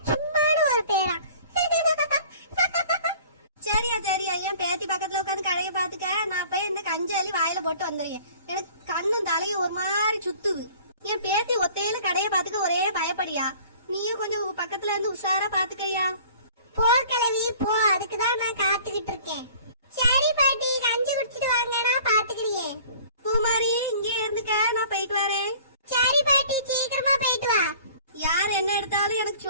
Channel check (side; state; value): both; inverted; correlation -0.49